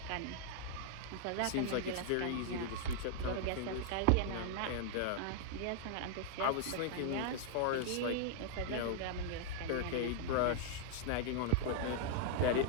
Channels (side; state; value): both; different; correlation -0.01